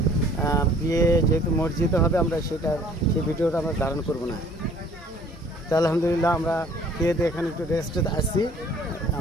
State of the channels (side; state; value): both; normal; correlation 0.55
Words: বিয়ে যেহেতু মসজিদে হবে, আমরা সেই ভিডিওটা আমরা ধারণ করব না। তো আলহামদুলিল্লাহ আমরা খেয়ে দিয়ে এখানে একটু রেস্টে আসছি,